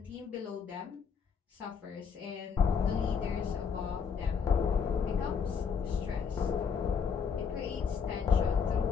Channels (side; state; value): right; quieter; 6.4 dB